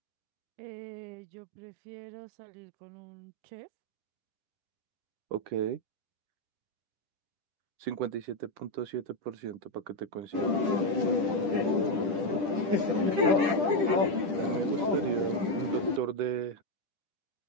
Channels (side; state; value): left; late; 10 ms